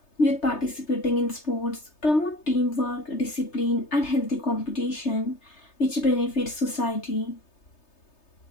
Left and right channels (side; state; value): right; late; 3.3 ms